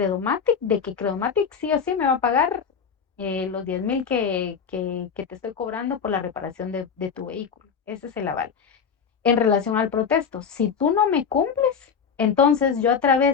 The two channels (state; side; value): quieter; right; 6.6 dB